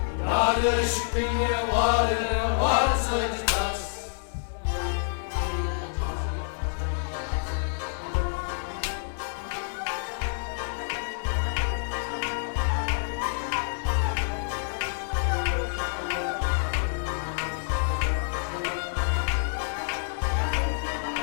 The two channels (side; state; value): right; silent; 59 dB below the other